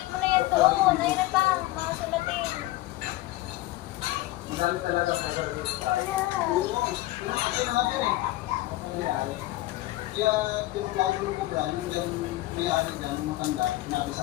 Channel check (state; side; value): quieter; right; 17.7 dB